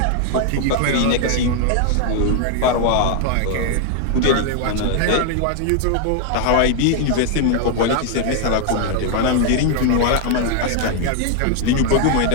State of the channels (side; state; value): both; different; correlation 0.00